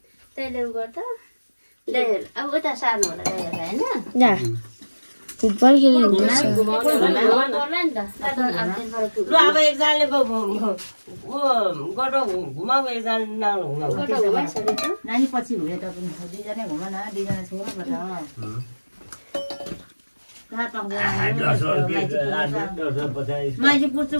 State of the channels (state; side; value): inverted; both; correlation -1.00